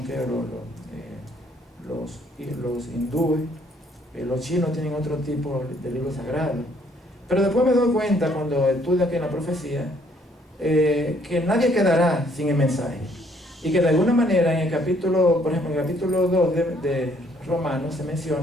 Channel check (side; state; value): both; normal; correlation 0.65